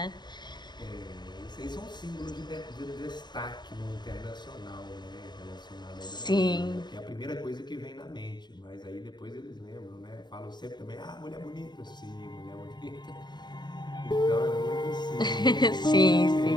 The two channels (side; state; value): right; late; 0.21 ms